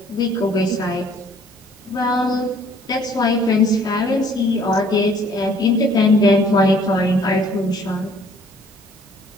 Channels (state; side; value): normal; both; correlation 0.58